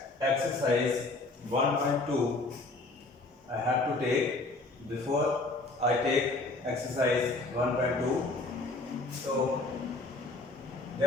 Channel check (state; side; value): quieter; right; 3.1 dB